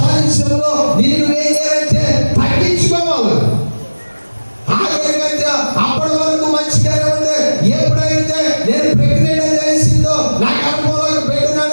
నిన్ను ఏం చేయాలంటే తగ్గించుకోవాలి. అప్పటి వరకు మంచిగానే ఉంది. ఎప్పుడైతే నేను ప్రెగ్నెంట్ అని తెలిసిందో, నాకు అనుభవంలో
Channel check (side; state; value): both; inverted; correlation -1.00